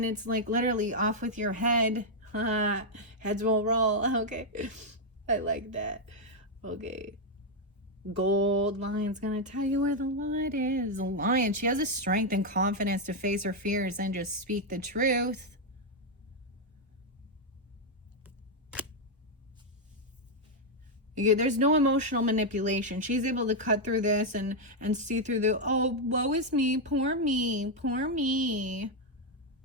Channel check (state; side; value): normal; both; correlation 0.00